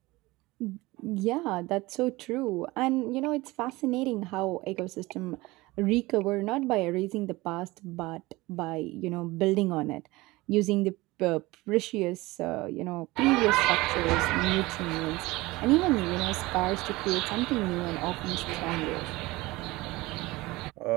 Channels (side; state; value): left; quieter; 20.8 dB